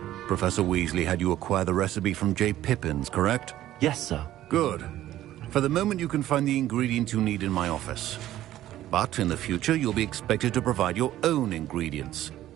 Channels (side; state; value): left; quieter; 13.6 dB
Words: Professor Weasley had you acquire the recipe from J. Pippins, correct? Yes, sir. Good. For the moment, you can find the ingredients you need in my office. But in the future, you'll be expected to provide your own ingredients.